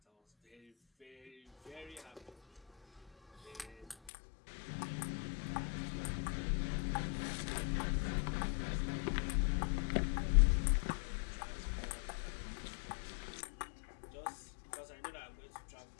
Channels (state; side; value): drops out; right; at 4.0 s